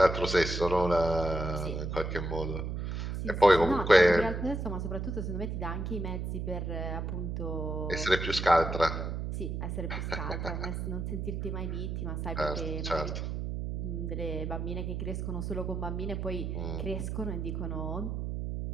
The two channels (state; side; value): noise; right; hum, 3 dB below the sound